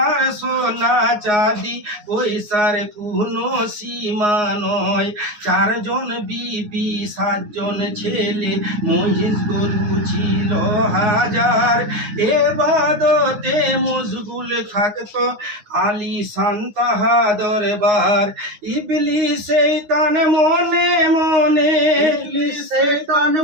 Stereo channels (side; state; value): left; late; 9.6 ms